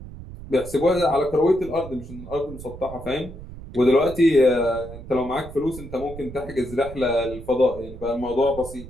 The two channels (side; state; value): right; noise; rumble, 13 dB below the sound